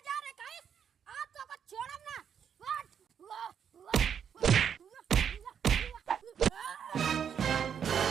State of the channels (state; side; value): quieter; left; 8.0 dB